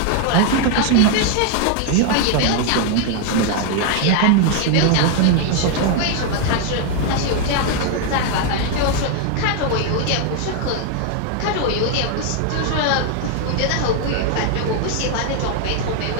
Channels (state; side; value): different; both; correlation 0.01